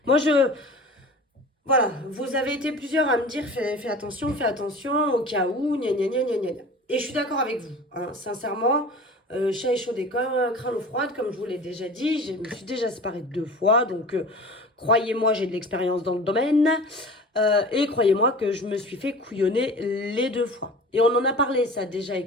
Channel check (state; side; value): normal; both; correlation 0.38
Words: Moi, voilà, vous avez été plusieurs à me dire fais attention au cas où, gna gna gna gna gna. Et je suis d'accord avec vous, hein, sincèrement, chat échaudé comme craint l'eau froide, comme je vous l'ai déjà dit, je me suis déjà séparée 2 fois, donc croyez-moi, j'ai de l'expérience dans le domaine, et croyez-moi que je me suis fait couillonner les 2 fois. Et on en a parlé ça déjà